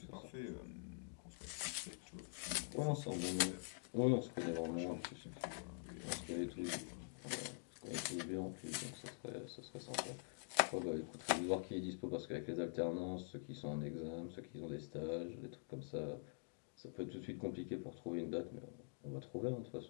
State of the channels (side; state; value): right; silent; digital silence